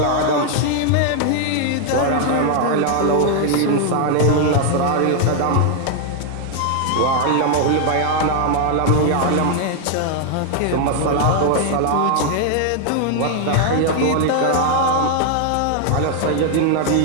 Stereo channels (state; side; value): different; both; correlation 0.00